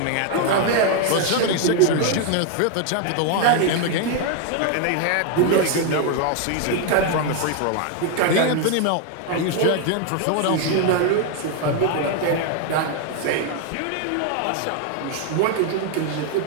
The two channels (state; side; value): different; both; correlation 0.01